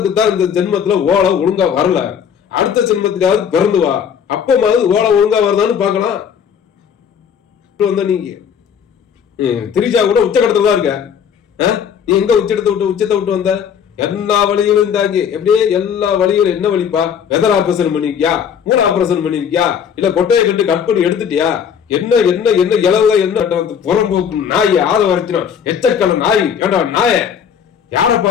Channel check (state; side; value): quieter; right; 7.8 dB